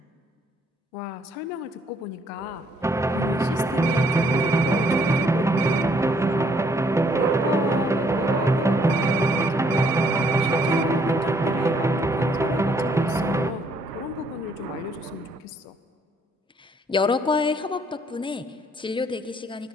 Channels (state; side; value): normal; both; correlation 0.67